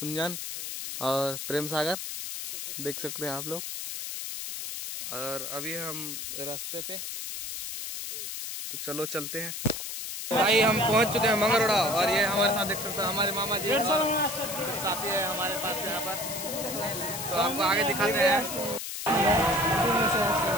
और प्रेम सागर, देख सकते हैं आप लोग। और अभी हम रास्ते पे, तो चलो चलते हैं। भाई हम पहुंच चुके हैं मंगरोड़ा और ये हमारे साथ देख सकते हैं हमारे मामा जी साथी है हमारे पास यहाँ पर। तो आपको आगे दिखाते हैं।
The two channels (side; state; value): left; noise; hiss, 6 dB below the sound